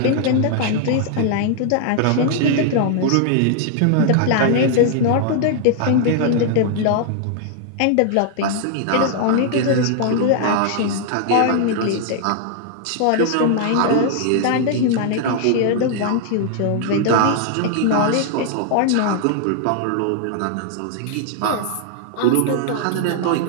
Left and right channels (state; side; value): different; both; correlation 0.00